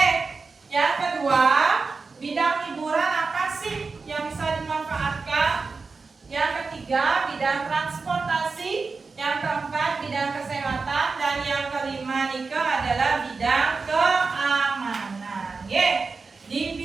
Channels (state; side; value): quieter; left; 4.4 dB